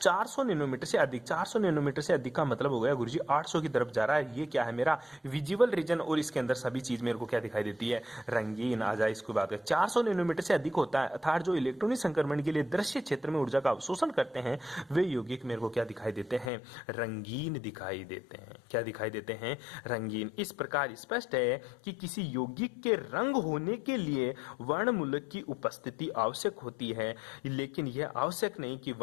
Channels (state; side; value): drops out; right; at 16.5 s